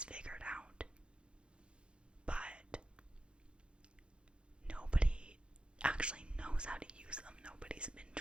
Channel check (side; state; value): left; late; 0.056 ms